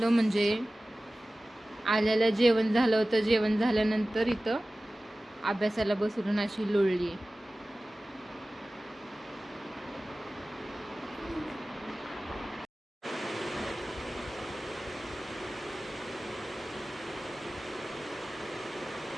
म्हणजे आल्याला जेवण झालं होतं. जेवण झाल्यानंतर इथं अभ्यासाला बसवून अशी लोळली.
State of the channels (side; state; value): both; normal; correlation 0.97